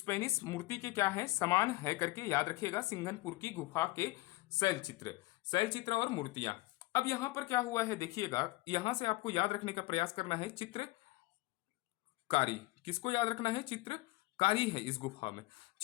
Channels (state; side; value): quieter; right; 20.6 dB